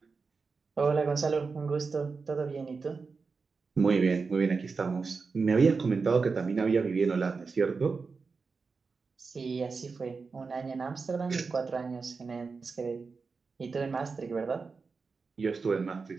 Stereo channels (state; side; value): quieter; left; 4.7 dB